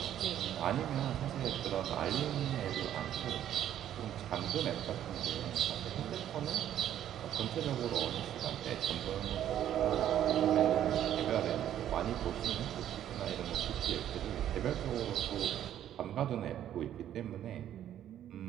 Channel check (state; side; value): quieter; left; 11.0 dB